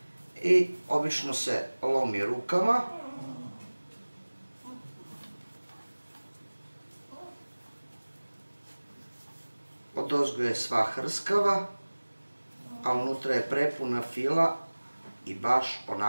i obično se lomi rukama. Odozgo je sva hrskava, a unutra je prepuna fila i baš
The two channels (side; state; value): both; inverted; correlation -1.00